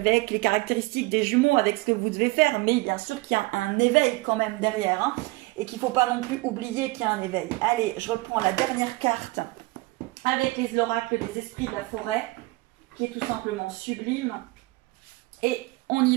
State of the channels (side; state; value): left; quieter; 22.3 dB